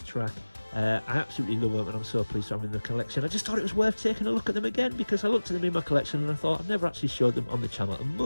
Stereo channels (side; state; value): both; inverted; correlation -1.00